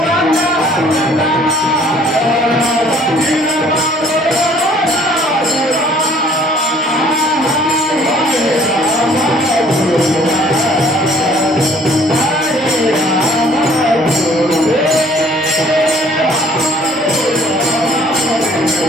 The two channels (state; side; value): normal; both; correlation 0.57